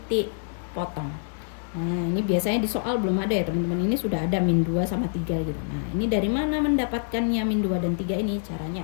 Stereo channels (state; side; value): silent; right; digital silence